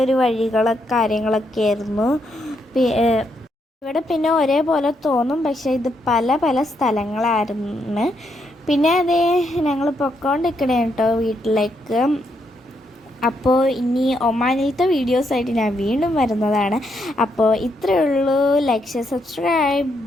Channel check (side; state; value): both; normal; correlation 0.78